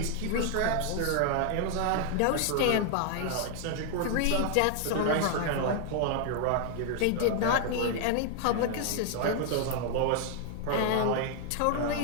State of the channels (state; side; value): different; both; correlation 0.00